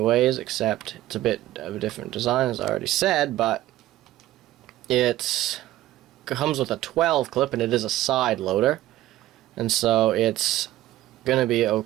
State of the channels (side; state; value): left; quieter; 15.0 dB